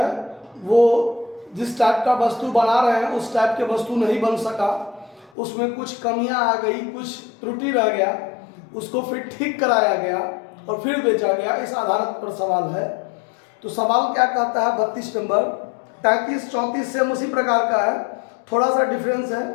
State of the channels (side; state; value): right; drops out; at 5.3 s